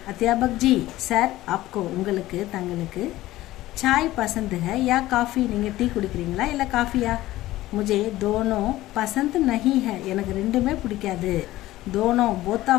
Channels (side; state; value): right; quieter; 16.3 dB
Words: अध्यापक जी सर आपको உங்களுக்கு தங்களுக்கு चाय पसंद है या काफ़ी? நீங்கள் டீ குடிக்கிறீங்களா இல்லை காஃபியா? मुझे दोनों पसंद नहीं है. எனக்கு ரெண்டுமே பிடிக்காது. दोनों both